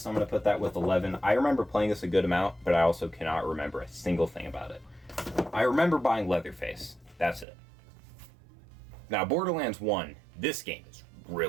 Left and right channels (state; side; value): drops out; left; at 7.5 s